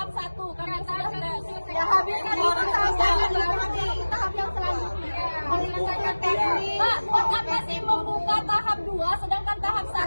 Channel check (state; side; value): inverted; both; correlation -1.00